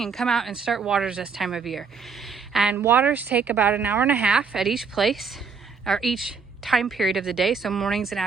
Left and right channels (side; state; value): left; quieter; 5.5 dB